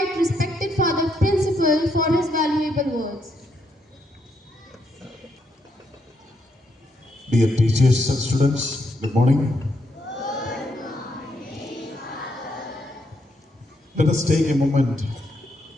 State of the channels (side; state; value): both; normal; correlation 0.77